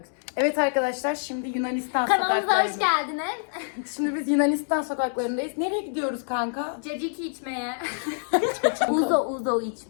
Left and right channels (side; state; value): right; silent; digital silence